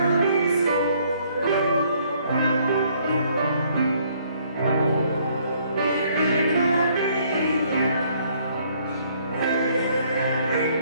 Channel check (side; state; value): both; inverted; correlation -0.64